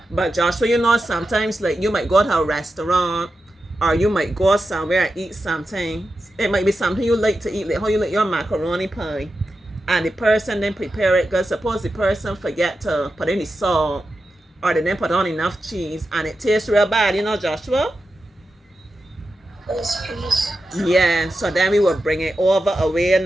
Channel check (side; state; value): both; normal; correlation 0.90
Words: But Joshua, you know, sometimes like you might go to a restaurant or you might go somewhere and eat something. It might be something you like to eat, like how you like your macaroni pie. And the person then prepare it because suppose the person forget to put any salt or they didn't put on enough cheese and it tastes real bad, you know, Joshua? Yes, please. Yeah, so then we will bring it over away